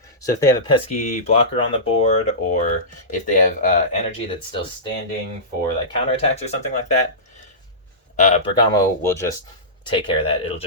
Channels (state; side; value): normal; both; correlation -0.19